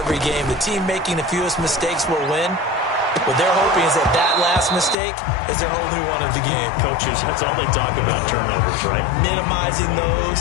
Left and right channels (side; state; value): right; drops out; at 5.0 s